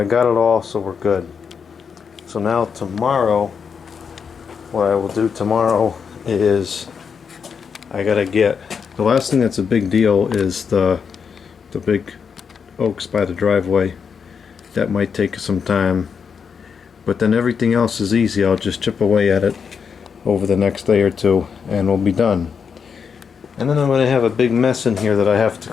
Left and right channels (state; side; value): quieter; right; 6.4 dB